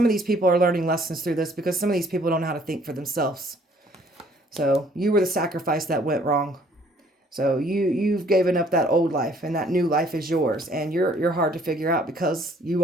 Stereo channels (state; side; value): normal; both; correlation 0.60